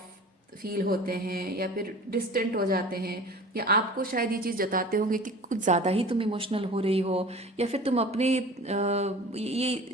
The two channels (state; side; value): normal; both; correlation 0.41